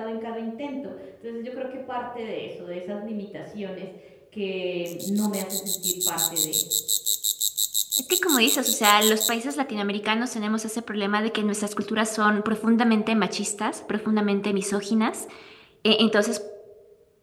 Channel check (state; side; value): identical; both; correlation 1.00